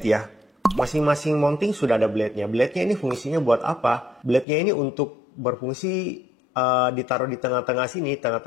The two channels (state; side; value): drops out; right; at 4.5 s